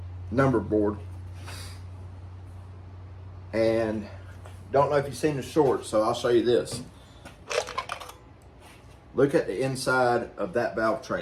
number board. And don't know if you've seen the short, so I'll show you this. Look at the inside of that valve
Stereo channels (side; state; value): both; identical; correlation 1.00